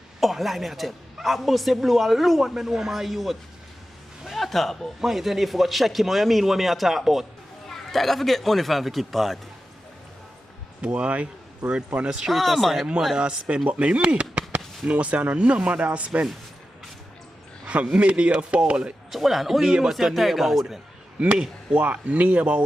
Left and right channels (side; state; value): both; normal; correlation 0.92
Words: Oh, lie me I tell. I bust a blue alone, me know my youth. What you talk about? Man, you tell you if you go check him, what you mean what me I talk about? Tiger forget money from the keep party. Boy, word on the street I say mother spend, but me no say no mother I spend. Me near fall. So hold on, how you know say Tiger spend? Me what